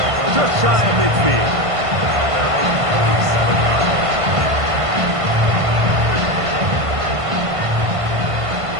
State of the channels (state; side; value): late; left; 1.5 ms